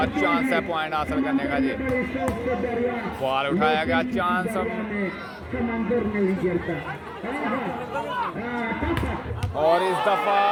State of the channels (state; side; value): identical; both; correlation 1.00